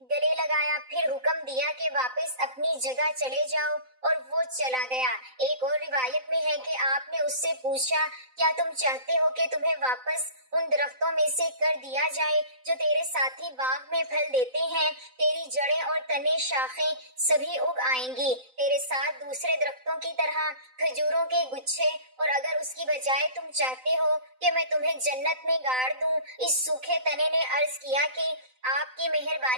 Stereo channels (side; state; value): left; late; 3.9 ms